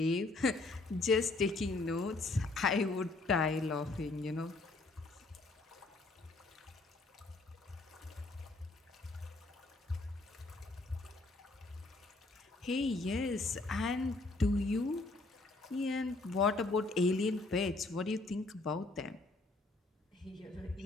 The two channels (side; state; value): right; quieter; 3.2 dB